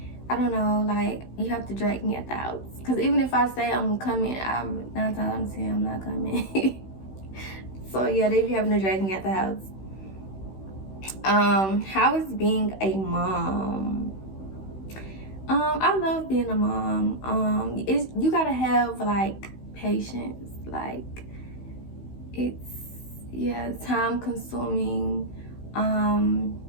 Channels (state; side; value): late; right; 16 ms